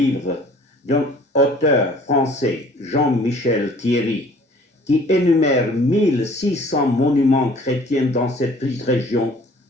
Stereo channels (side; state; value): both; normal; correlation 0.52